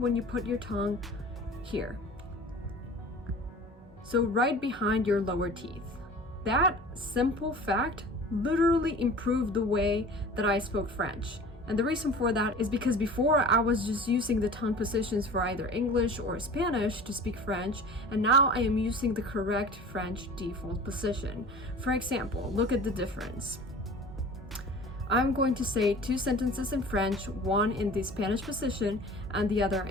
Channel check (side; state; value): both; normal; correlation 0.41